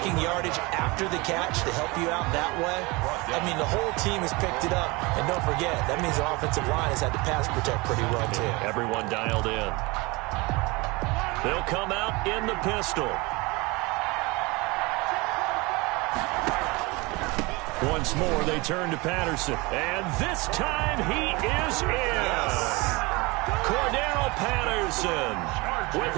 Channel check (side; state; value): left; quieter; 24.7 dB